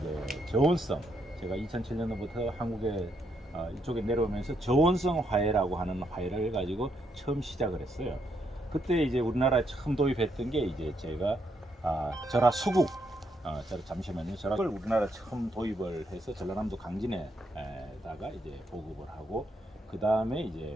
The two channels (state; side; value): normal; both; correlation 0.77